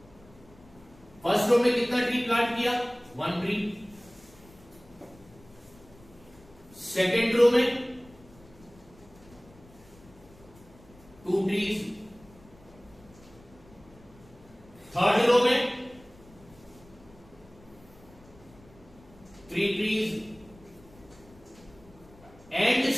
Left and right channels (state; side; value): noise; left; rumble, 24 dB below the sound